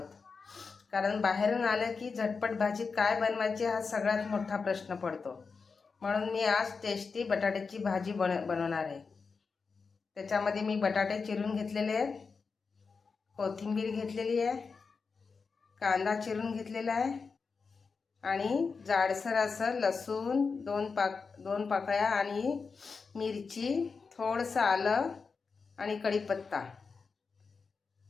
कारण बाहेरून आलं की झटपट भाजी काय बनवायची हा सगळ्यात मोठा प्रश्न पडतो. म्हणून मी आज टेस्टी बटाट्याची भाजी बनवणार आहे. त्याच्यामध्ये मी बटाटे चिरून घेतलेले आहेत, कोथिंबीर घेतलेली आहे, कांदा चिरून घेतलेला आहे आणि जाडसर असं लसूण दोन पाकळ्या आणि मिरची, थोडंसं आलं आणि कढीपत्ता.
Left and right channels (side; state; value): right; quieter; 4.9 dB